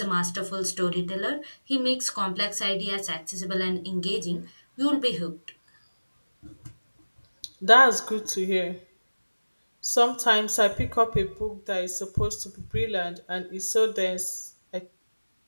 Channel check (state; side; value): inverted; both; correlation -1.00